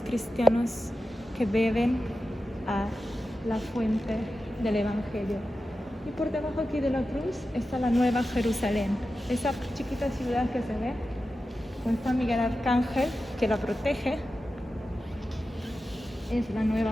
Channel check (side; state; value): both; normal; correlation 0.92